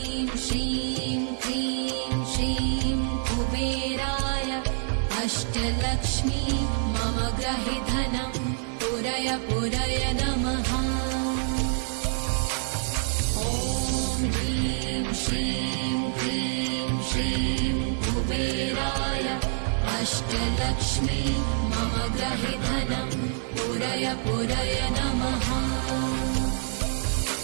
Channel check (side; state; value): left; silent; 60 dB below the other